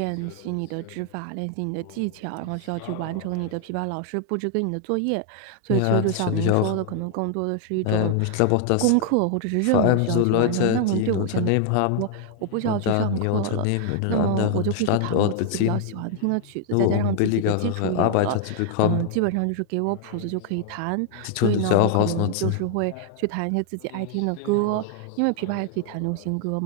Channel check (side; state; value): both; different; correlation 0.00